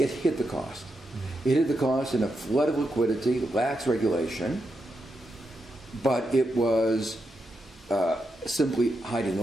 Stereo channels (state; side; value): normal; both; correlation 0.85